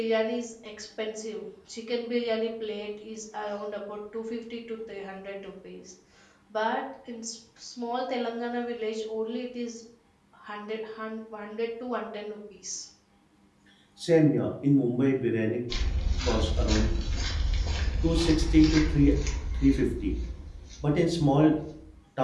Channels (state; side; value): identical; both; correlation 1.00